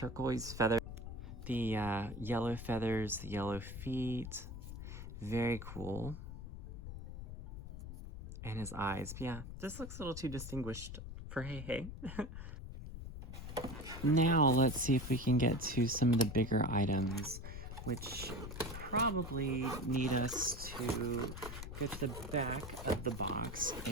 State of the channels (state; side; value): noise; left; rumble, 9 dB below the sound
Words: feather. The yellow feathers, the yellow feet. Very cool. And his eyes. Yeah, this looks a little too distinguished for Hei Hei. Now let's see if we can get to some of the bigger items, which probably need us to get the back of the box